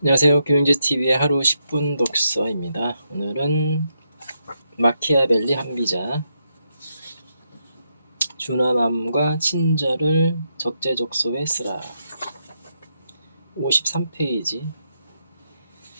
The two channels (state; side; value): inverted; both; correlation -0.81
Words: 안녕하세요. 교양제TV의 하루 10분 독서입니다. 오늘은 마키아벨리 한비자 준화맘과 친절을 적재적소에 쓰라. 53페이지.